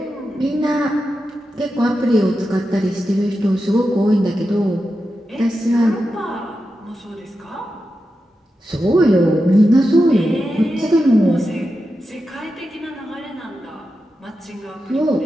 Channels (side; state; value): both; normal; correlation 0.89